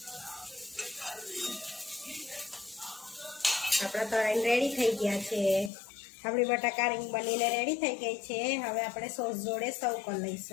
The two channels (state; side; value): drops out; right; at 5.7 s